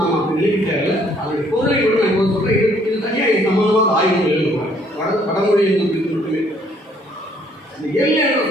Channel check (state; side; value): normal; both; correlation 0.64